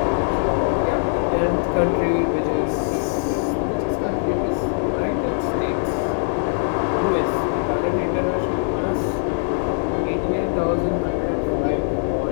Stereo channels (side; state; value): right; silent; 64 dB below the other